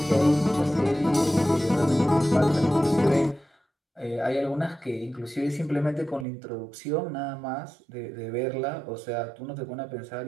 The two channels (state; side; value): drops out; left; at 6.2 s